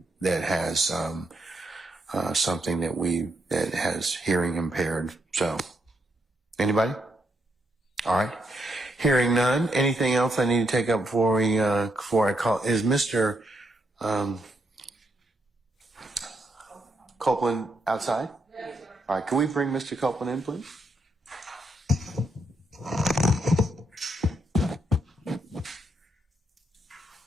that has something that has hearing impaired. So anybody? All right. Hearing none. Anything else I need to take up before I call? Is Mr. Copeland outside? All right. Can we bring Mr. Copeland in, please?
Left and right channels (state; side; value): normal; both; correlation 0.79